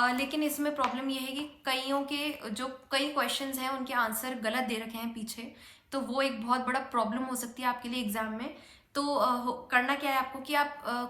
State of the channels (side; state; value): both; identical; correlation 1.00